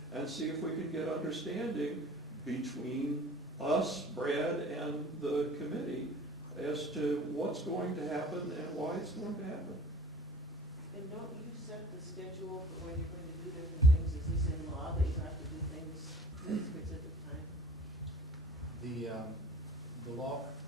and see if we can get understanding between us, Brad, and the committee as to what's going to happen and why it's going to happen. And don't you set the schedule for when you're going to do different things? Is this in law that you have to do things at a specific time? The law,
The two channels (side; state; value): both; normal; correlation 0.46